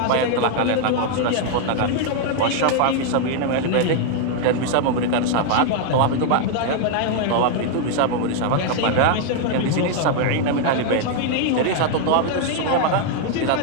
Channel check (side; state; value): both; different; correlation 0.00